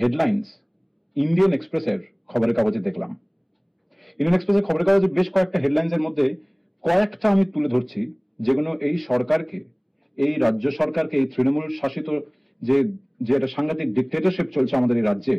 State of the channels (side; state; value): both; identical; correlation 1.00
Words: ইন্ডিয়ান এক্সপ্রেসের খবরের কাগজে দেখলাম। ইন্ডিয়ান এক্সপ্রেসের খবরের কাগজে বেশ কয়েকটা হেডলাইন্সের মধ্যে কয়েকটা আমি তুলে ধরছি, যেগুলো এই সরকারকে, এই রাজ্য সরকারকে, এই তৃণমূল শাসিত যে একটা সাংঘাতিক ডিক্টেটরশিপ চলছে আমাদের এই রাজ্যে,